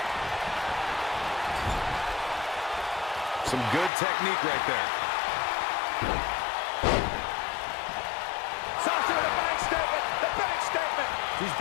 Some good technique right there. Sasha with a bank statement. The bank statement. She's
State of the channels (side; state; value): right; drops out; at 3.9 s